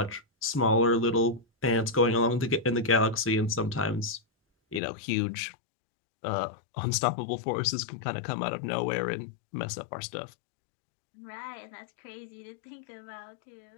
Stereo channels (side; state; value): right; drops out; at 4.8 s